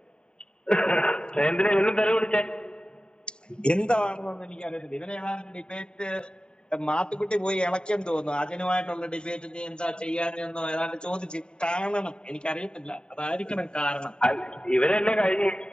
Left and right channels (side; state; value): right; late; 0.049 ms